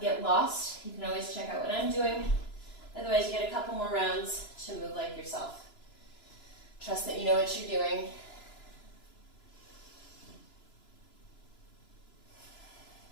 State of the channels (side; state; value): right; late; 2.9 ms